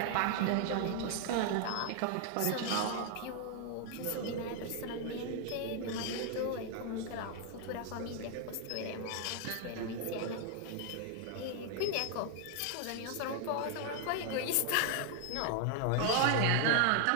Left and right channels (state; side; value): different; both; correlation 0.00